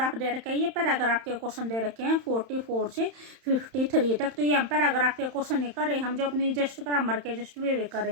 दे रखा है। ये पैराग्राफ के क्वेश्चन दे रखे हैं 44 से 53 तक। तो ये हम पैराग्राफ के क्वेश्चन नहीं कर रहे, हम जो अपनी जस्ट ग्रामर के जस्ट वे कर रहे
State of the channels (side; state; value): left; late; 31 ms